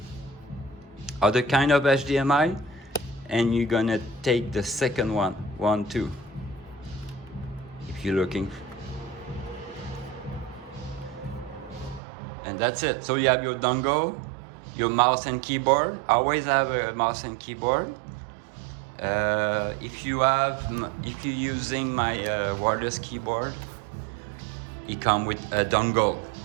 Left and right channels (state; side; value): drops out; left; at 12.0 s